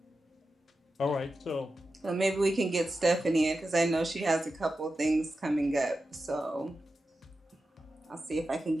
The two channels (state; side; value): normal; both; correlation 0.91